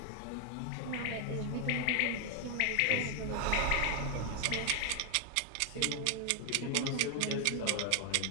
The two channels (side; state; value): both; different; correlation 0.00